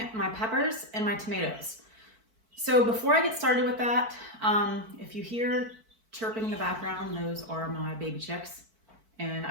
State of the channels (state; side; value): late; left; 4.5 ms